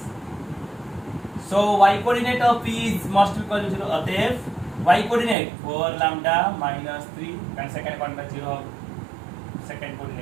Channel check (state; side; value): drops out; left; at 5.4 s